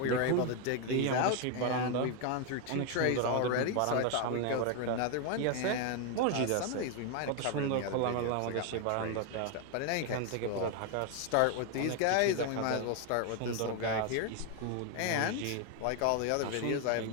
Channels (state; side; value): different; both; correlation 0.01